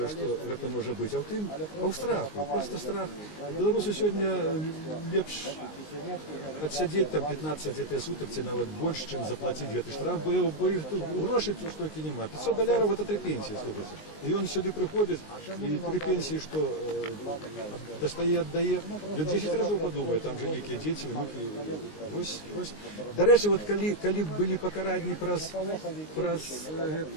што гэта можа быць, а ў тым, а ў страху, просто страх. Беларусу сёння лепш адсядзець там 15 сутак ці нават больш, чым заплаціць гэты штраф, бо іх тут грошай тут столькі няма. $500 гэта 3 пенсіі, слухайце. І ён сюды прыходзіць, і 3 пенсіі, што дастае, аддае, ён 10 разоў падумае, там жа нейкія дзеці, внукі. Вось. Дарэчы, вот калі былі пакаранні праз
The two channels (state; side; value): late; right; 19 ms